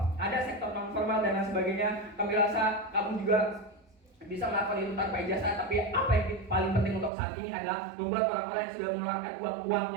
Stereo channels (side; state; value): left; drops out; at 7.1 s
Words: ada sektor non formal dan lain sebagainya. Kami rasa kamu juga bisa melakukan itu tanpa ijazah, tapi apa yang paling penting untuk saat ini adalah membuat orang-orang yang sudah mengeluarkan